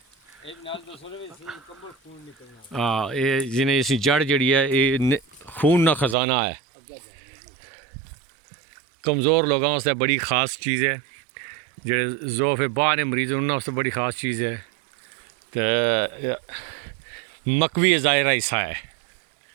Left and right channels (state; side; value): drops out; left; at 6.2 s